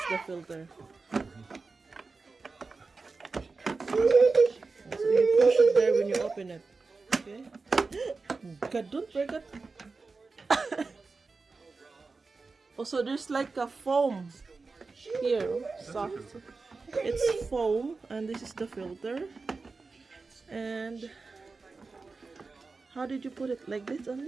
the filter. So you push it there when you open it. Okay. God, don't break it. Also, there's like a foam here. Soft. It's foam, and this is the filter. And how did you put it? Like this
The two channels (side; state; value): left; quieter; 4.1 dB